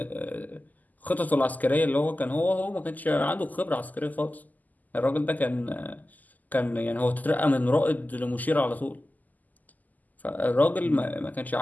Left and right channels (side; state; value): right; late; 0.081 ms